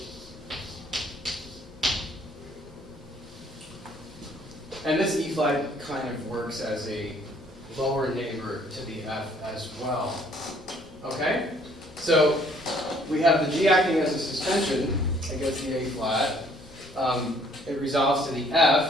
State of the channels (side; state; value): both; normal; correlation 0.62